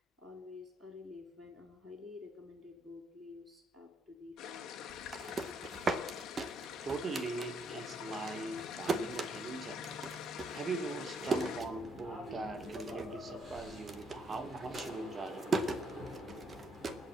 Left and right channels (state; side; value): normal; both; correlation 0.71